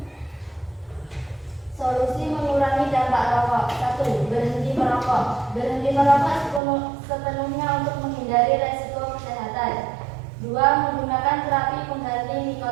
Solusi mengurangi dampak rokok. 1. Berhenti merokok. Berhenti merokok sepenuhnya untuk menghindari resiko kesehatan. 2. Menggunakan terapi pengganti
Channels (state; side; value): drops out; left; at 6.6 s